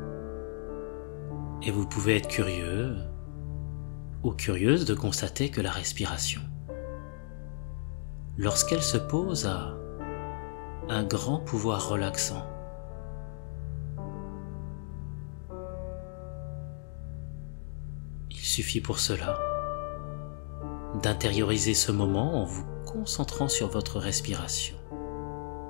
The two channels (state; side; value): silent; right; digital silence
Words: Et vous pouvez être curieux ou curieuse de constater que la respiration, lorsqu'elle se pose, a un grand pouvoir relaxant. Il suffit pour cela d'intérioriser ce moment en vous concentrant sur votre respiration.